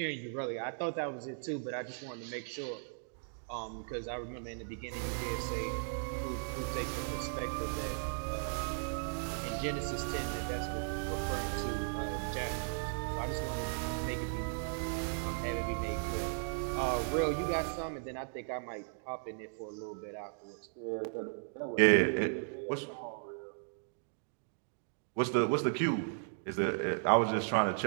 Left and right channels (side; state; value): left; silent; digital silence